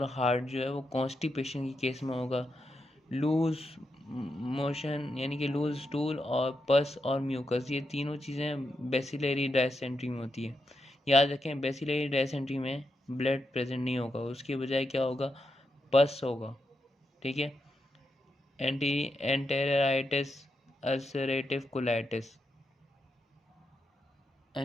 हार्ड जो है वो कॉन्स्टिपेशन की केस में होगा। लूज मोशन यानी कि लूज स्टूल और पस और म्यूकस, ये तीनों चीज़ें बेसिलरी डायसेंट्री में होती है। याद रखें, बेसिलरी डायसेंट्री में ब्लड प्रेजेंट नहीं होगा, उसके बजाय क्या होगा, पस होगा, ठीक है। Enteritis, ulcerative colitis.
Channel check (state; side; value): normal; both; correlation 0.85